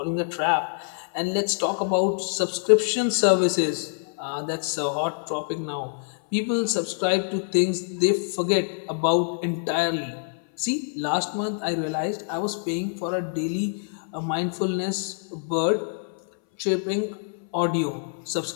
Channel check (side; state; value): right; silent; 61 dB below the other